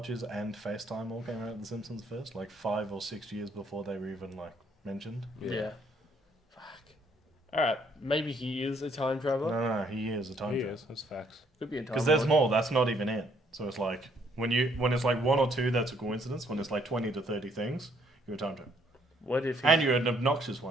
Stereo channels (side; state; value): both; normal; correlation 0.67